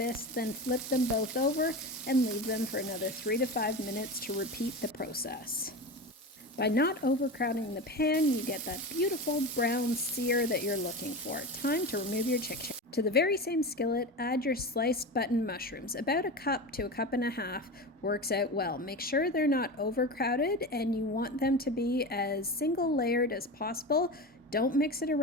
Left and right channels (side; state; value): both; normal; correlation 0.25